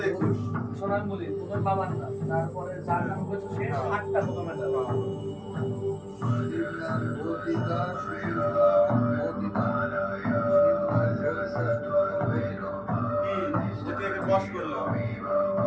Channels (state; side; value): identical; both; correlation 1.00